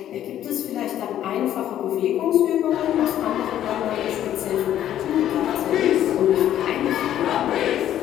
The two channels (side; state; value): right; quieter; 11.5 dB